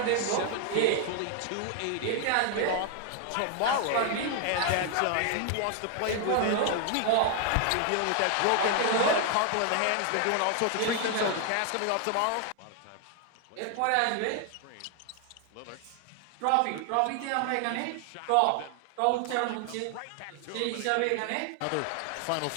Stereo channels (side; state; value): both; different; correlation 0.00